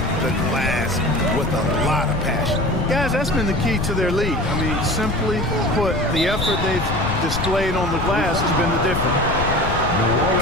the glass with a lot of passion. Guys, that's been the key to their lead. I mean, simply put, the effort they've displayed on the glass has been the difference.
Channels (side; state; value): left; noise; rumble, 4 dB below the sound